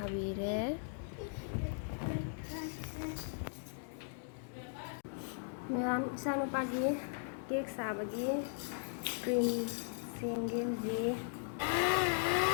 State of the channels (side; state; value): right; silent; digital silence